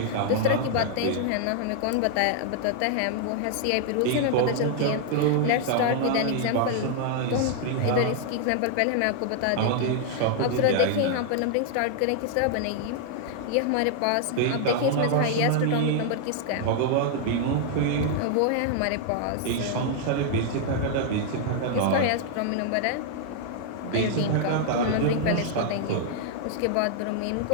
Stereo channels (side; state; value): both; different; correlation 0.00